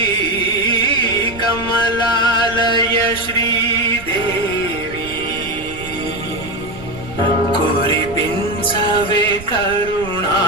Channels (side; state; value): right; noise; rumble, 16 dB below the sound